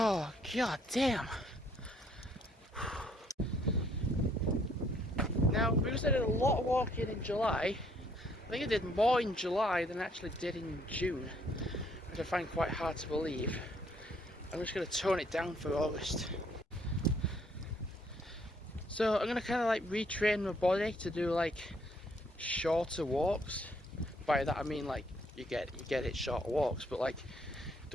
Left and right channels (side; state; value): both; normal; correlation 0.66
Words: god damn. Now, because I did a lot of walking in July, I think I did more in July than I actually did in June, which I find quite hard to believe. I'm just going to tone it down for August. So I'm going to kind of like retrain my body to do like shorter walks. By that I mean like you get it shorter walks, but like